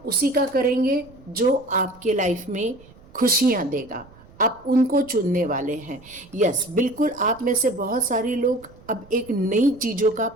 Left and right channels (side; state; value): right; noise; rumble, 24 dB below the sound